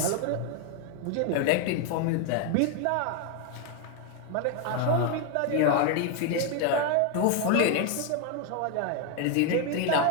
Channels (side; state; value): both; different; correlation 0.01